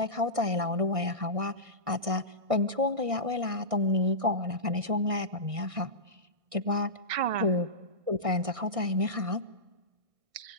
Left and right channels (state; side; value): late; left; 1.6 ms